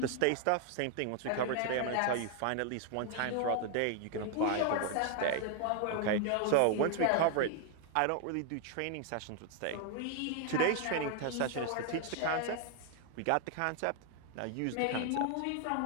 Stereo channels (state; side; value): different; both; correlation 0.00